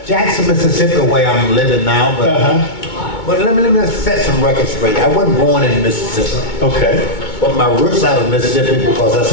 Jackson, Mississippi, where I'm living now, but let me set some records straight. I wasn't born in Mississippi. Okay. But my roots out of Mississippi because that's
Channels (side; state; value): right; late; 2.2 ms